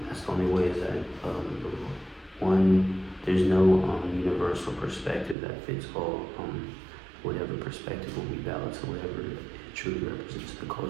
that's the only way, is that there's no universal perspective that fits all. Whatever perspective will be valid to whatever it truly represents the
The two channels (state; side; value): drops out; left; at 5.4 s